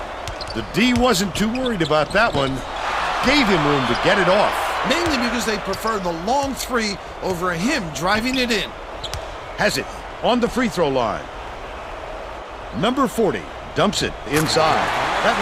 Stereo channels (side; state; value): both; identical; correlation 1.00